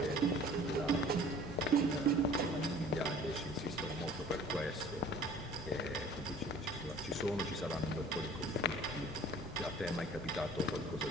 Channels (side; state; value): both; normal; correlation 0.49